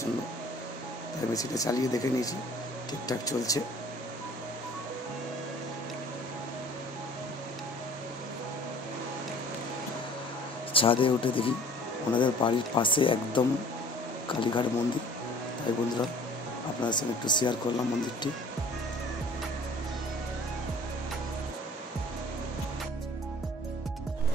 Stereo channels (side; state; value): both; normal; correlation 0.50